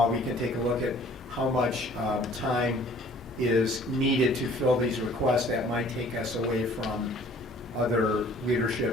we can take a look at how much time is needed to fill these requests that might take us away from other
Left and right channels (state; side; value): normal; both; correlation 0.53